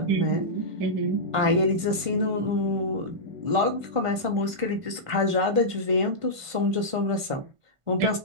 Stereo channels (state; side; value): late; left; 1.5 ms